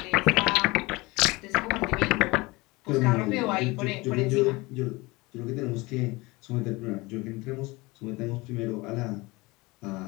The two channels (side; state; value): right; quieter; 23.2 dB